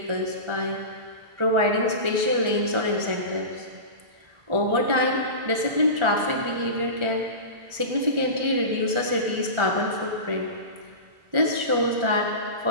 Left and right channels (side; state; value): left; late; 1.4 ms